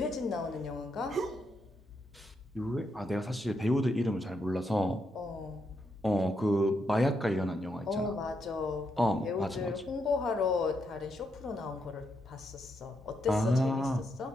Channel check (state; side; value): normal; both; correlation 0.80